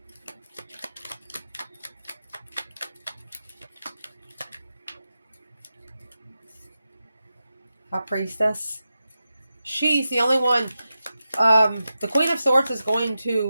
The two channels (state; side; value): inverted; both; correlation -0.91